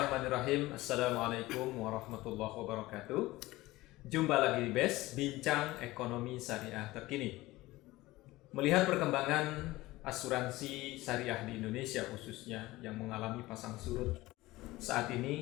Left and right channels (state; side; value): quieter; right; 18.8 dB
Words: Assalamualaikum warahmatullahi wabarakatuh. Jumpa lagi di BES, Bincang Ekonomi Syariah Terkini. Melihat perkembangan asuransi syariah di Indonesia khususnya yang mengalami pasang surut saat